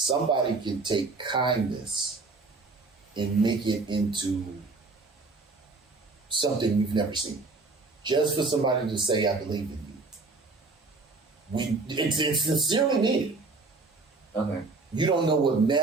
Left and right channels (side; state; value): left; quieter; 3.7 dB